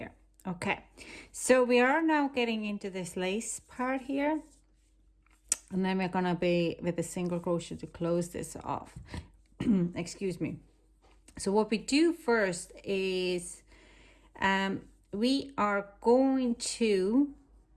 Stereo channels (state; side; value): identical; both; correlation 1.00